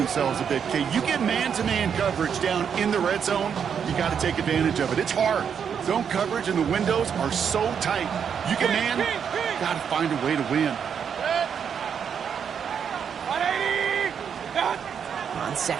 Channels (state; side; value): quieter; left; 7.4 dB